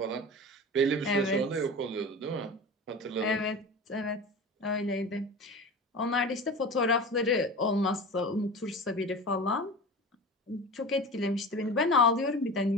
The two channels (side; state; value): both; normal; correlation 0.32